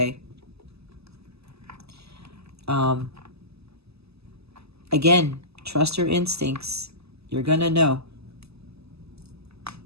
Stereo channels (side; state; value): left; late; 0.79 ms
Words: Again, trust your instincts. You're going to know.